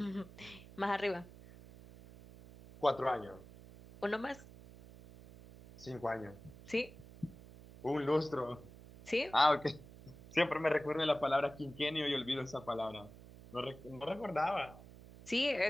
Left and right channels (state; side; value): noise; right; hum, 18 dB below the sound